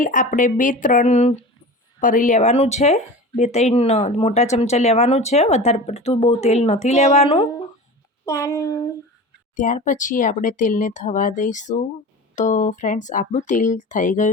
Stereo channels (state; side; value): normal; both; correlation 0.34